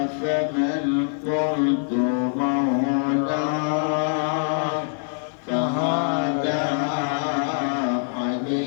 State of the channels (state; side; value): silent; right; 56 dB below the other